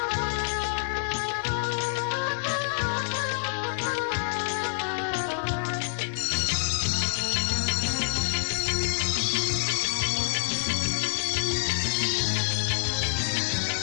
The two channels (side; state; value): right; silent; digital silence